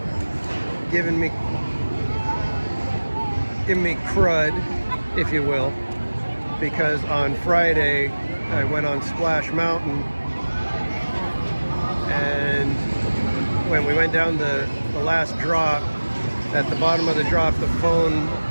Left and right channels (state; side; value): inverted; both; correlation -1.00